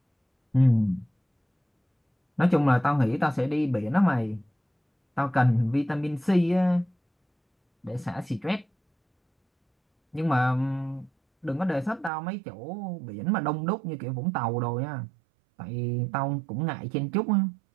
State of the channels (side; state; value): left; drops out; at 12.1 s